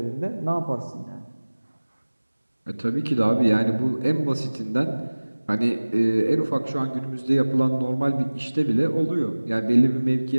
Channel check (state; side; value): inverted; both; correlation -1.00